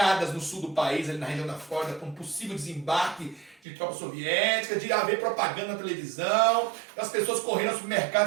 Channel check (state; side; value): drops out; left; at 3.6 s